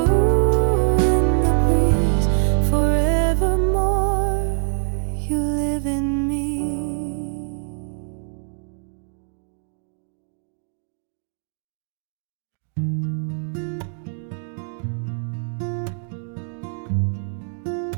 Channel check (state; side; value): silent; left; digital silence